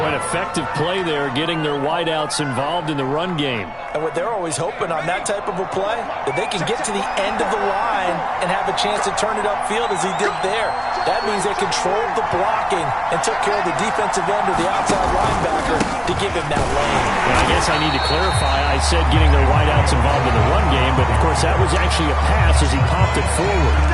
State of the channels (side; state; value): both; identical; correlation 1.00